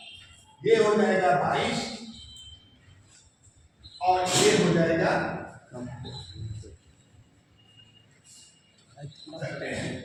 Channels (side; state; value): both; identical; correlation 1.00